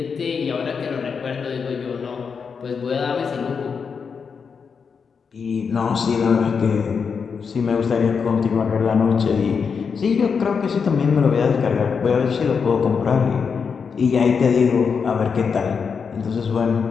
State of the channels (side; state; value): right; quieter; 5.9 dB